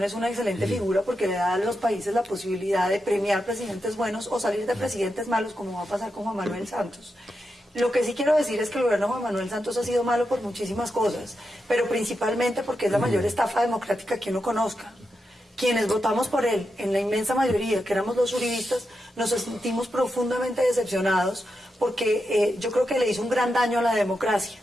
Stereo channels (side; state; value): both; normal; correlation 0.87